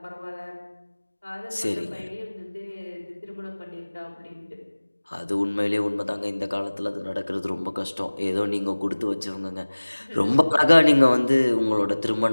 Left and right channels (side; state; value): both; inverted; correlation -1.00